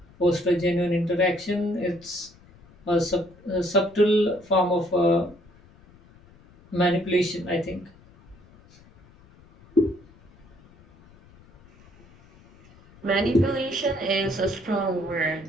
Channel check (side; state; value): left; noise; rumble, 26 dB below the sound